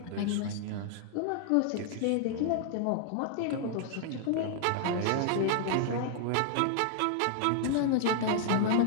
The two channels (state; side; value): different; both; correlation -0.01